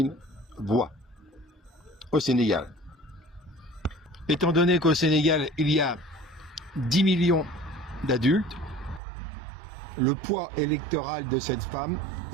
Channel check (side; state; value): left; drops out; at 9.0 s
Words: voix au Sénégal. Étant donné qu'au Sénégal, il y a 10 millions d'adultes, le poids électoral de cette femme,